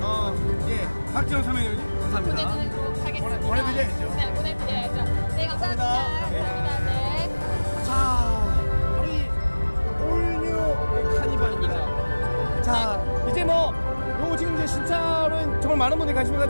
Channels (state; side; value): inverted; both; correlation -1.00